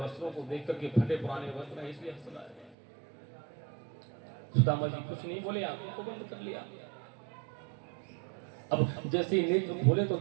को देख करके फटे पुराने वस्त्र हैं, इसलिए हंस रहा है। सुदामा जी कुछ नहीं बोले, आंखों को बंद कर लिया। अब जैसे ही नेत्र खोले तो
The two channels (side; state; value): left; drops out; at 2.8 s